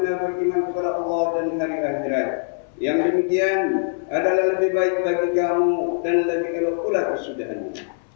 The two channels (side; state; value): right; silent; 64 dB below the other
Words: beriman kepada Allah dan hari akhirat. Yang demikian adalah lebih baik bagi kamu dan lebih elok pula kesudahannya.